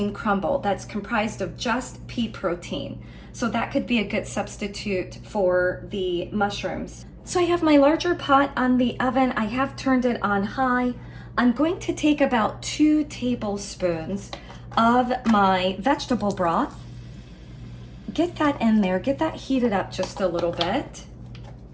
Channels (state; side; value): identical; both; correlation 1.00